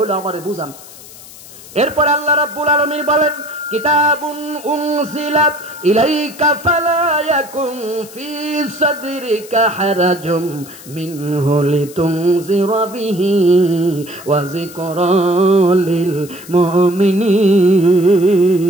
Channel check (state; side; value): noise; left; hiss, 18 dB below the sound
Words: আমারে বুঝান। এরপর আল্লাহ রাব্বুল আলামিন বলেন কিতাবুন উনজিলাত ইলাইকা ফালা ইয়াকুন ফি সাদরিকা হারাজুম মিনহু লিতুনজিরা বিহি ওয়া যিকরা লিল মুমিনিন।